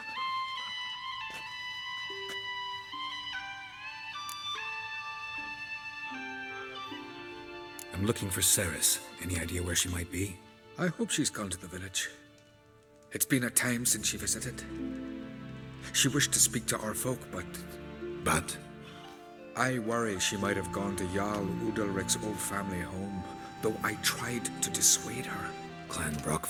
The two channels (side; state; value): both; identical; correlation 1.00